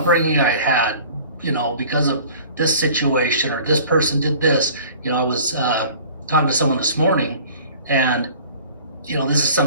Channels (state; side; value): inverted; both; correlation -0.46